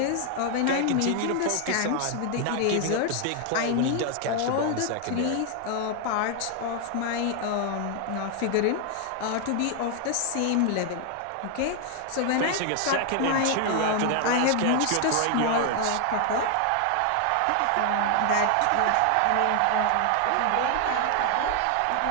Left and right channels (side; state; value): both; different; correlation 0.00